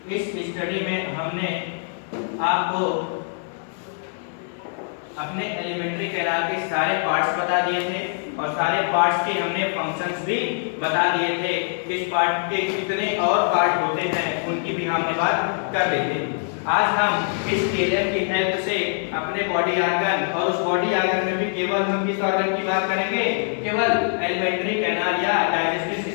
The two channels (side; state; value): right; silent; 63 dB below the other